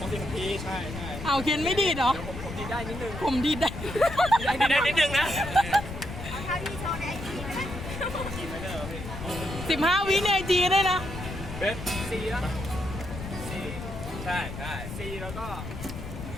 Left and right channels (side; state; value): left; noise; rumble, 9 dB below the sound